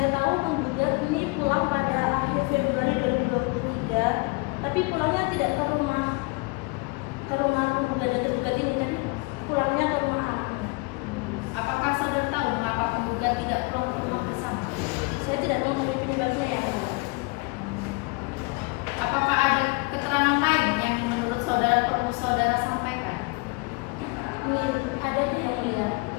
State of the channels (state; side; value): quieter; right; 28.2 dB